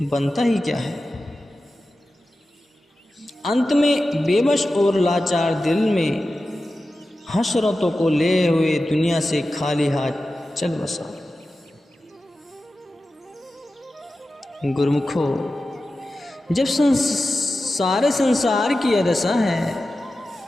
बनता ही क्या है। अंत में बेबस और लाचार दिल में हसरतों को ले हुए दुनिया से खाली हाथ चल बसा। गुरुमुखो, जब सारे संसार की यह दशा है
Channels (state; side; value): normal; both; correlation 0.93